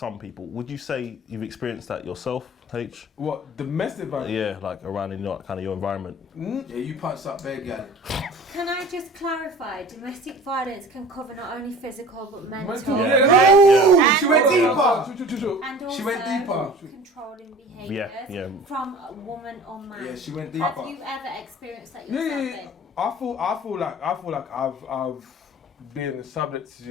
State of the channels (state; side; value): normal; both; correlation 0.42